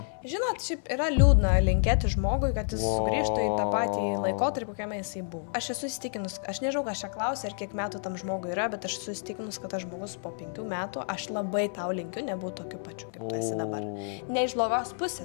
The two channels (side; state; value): right; silent; digital silence